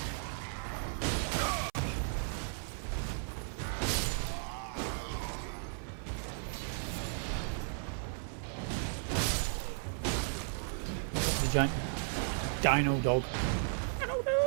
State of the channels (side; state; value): left; silent; 54 dB below the other